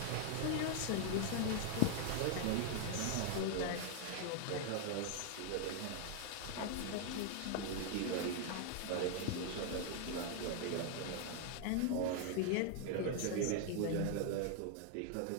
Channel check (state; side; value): different; both; correlation 0.00